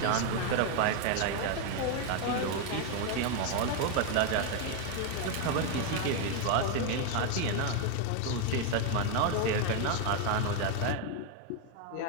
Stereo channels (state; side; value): different; both; correlation 0.01